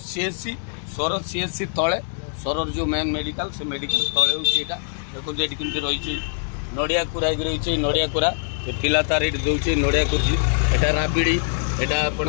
सीएससी तले सरर जो मेन मेडिकल से मेडिकल तले होता देखो ये कमी रही नड़िया कुरा रही नड़िया कुरा पिला तार ये दूसरी नड़िया कुर्सी एटा राबिड़ी एटा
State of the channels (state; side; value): silent; right; 63 dB below the other